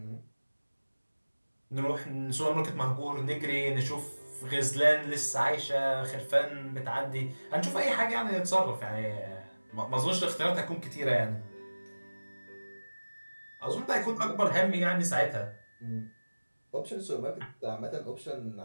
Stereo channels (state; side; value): inverted; both; correlation -1.00